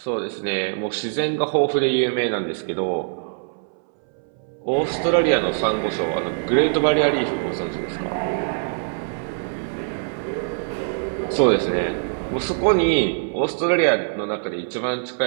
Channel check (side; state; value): left; silent; 63 dB below the other